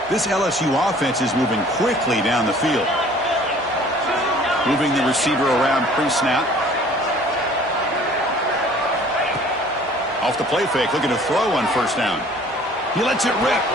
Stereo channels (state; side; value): normal; both; correlation 0.52